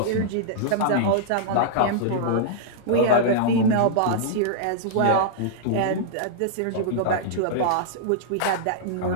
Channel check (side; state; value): both; different; correlation -0.02